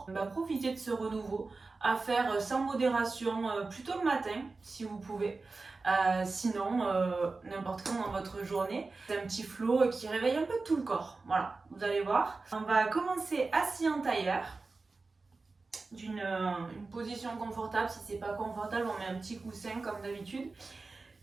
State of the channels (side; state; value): left; quieter; 3.8 dB